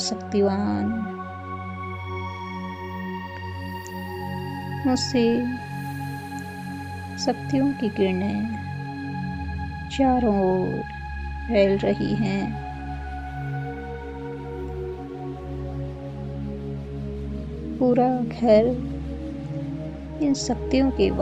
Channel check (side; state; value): both; identical; correlation 1.00